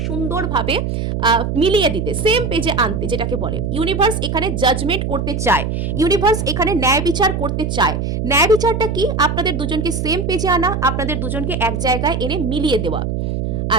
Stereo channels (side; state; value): right; noise; hum, 2 dB below the sound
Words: সুন্দরভাবে মিলিয়ে দিতে, সেম পেজে আনতে, যেটাকে বলে ইউনিভার্স এখানে জাজমেন্ট করতে চায়। ইউনিভার্স এখানে ন্যায় বিচার করতে চায়। ন্যায় বিচারটা কি? আপনাদের দুজনকে সেম পেজে আনা, আপনাদের দুজনকে এক জায়গায় এনে মিলিয়ে দেওয়া।